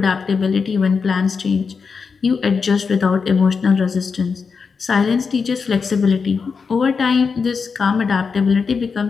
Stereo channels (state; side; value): quieter; right; 5.4 dB